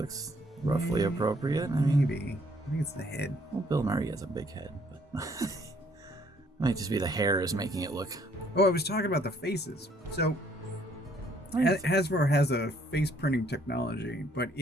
roughly appropriate. Maybe. I think it's the head. Well, Bill Murray has a big head, but it might just be the hair is making it look. Oh, I was talking about the faces. So Hasbro has a face printing technology, but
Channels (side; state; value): both; normal; correlation 0.64